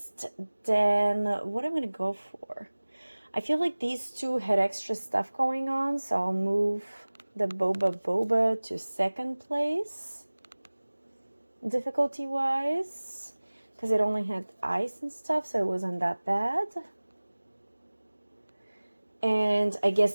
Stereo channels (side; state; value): both; inverted; correlation -1.00